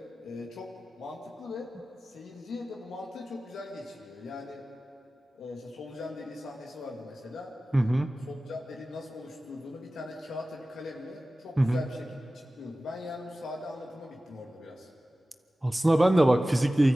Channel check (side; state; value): both; normal; correlation 0.96